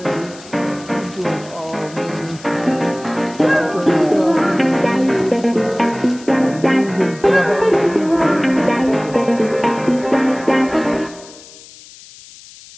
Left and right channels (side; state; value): left; noise; hiss, 20 dB below the sound